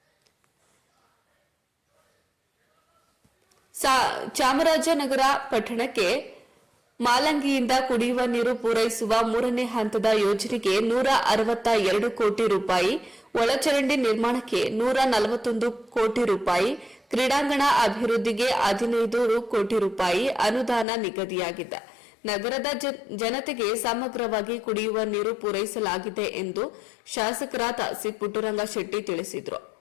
ಚಾಮರಾಜನಗರ ಪಟ್ಟಣಕ್ಕೆ ಮಾಲಂಗಿಯಿಂದ ಕುಡಿಯುವ ನೀರು ಪೂರೈಸುವ 3ನೇ ಹಂತದ ಯೋಜನೆಗೆ 162 ಕೋಟಿ ರೂಪಾಯಿ, ಒಳಚರಂಡಿ ನಿರ್ಮಾಣಕ್ಕೆ 141 ಕೋಟಿ ರೂಪಾಯಿ, ಕ್ರೀಡಾಂಗಣ ಅಭಿವೃದ್ಧಿಗೆ 15 ಕೋಟಿ ರೂಪಾಯಿ ಅನುದಾನ ನಿಗದಿಯಾಗಿದೆ. ನಗರದ ಜನತೆಗೆ ಸಮಗ್ರವಾಗಿ ಕುಡಿಯುವ ನೀರು ಪೂರೈಸಲಾಗಿದೆ ಎಂದು ಶಾಸಕರಾದ ಸಿ ಪುಟ್ಟರಂಗ ಶೆಟ್ಟಿ ತಿಳಿಸಿದರು.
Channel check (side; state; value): right; drops out; at 20.9 s